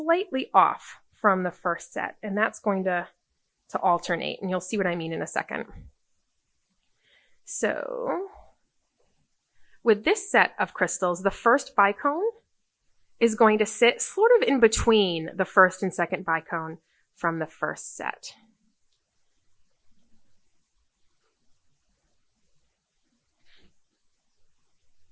off from the first set, and that's going to alternate, and you'll see what I mean in a second. So with this set of crystals, the first bicone is going to sit sort of in between the first and second bicone from the first set.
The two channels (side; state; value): both; identical; correlation 1.00